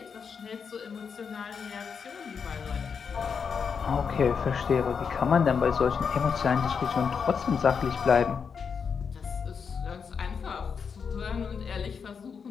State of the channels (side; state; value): right; quieter; 6.2 dB